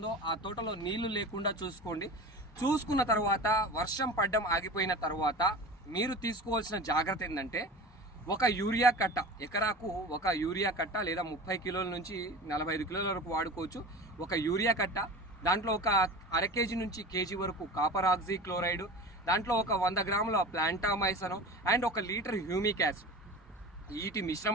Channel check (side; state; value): both; normal; correlation 0.34